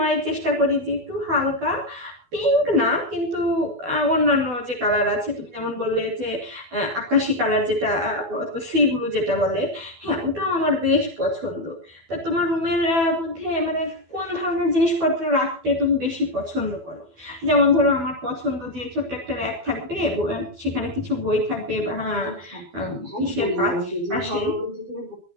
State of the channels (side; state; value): left; late; 12 ms